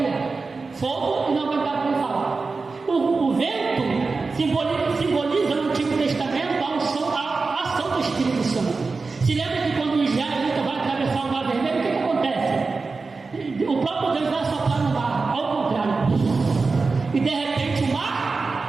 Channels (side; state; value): left; quieter; 4.1 dB